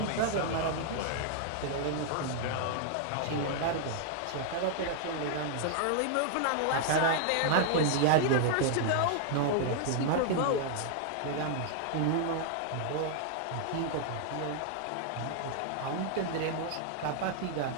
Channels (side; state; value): both; different; correlation 0.00